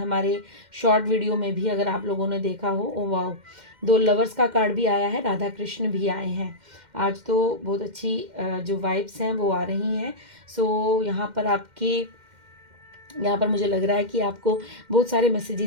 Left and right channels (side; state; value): left; late; 2.1 ms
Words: शॉर्ट वीडियो में भी अगर आप लोगों ने देखा हो, ओ वाओ, 2 लवर्स का कार्ड भी आया है, राधा कृष्ण भी आए हैं। आज तो बहुत अच्छी जो वाइब्स हैं वो आ रही हैं। सो यहाँ पर मुझे लग रहा है कि आपको बहुत सारे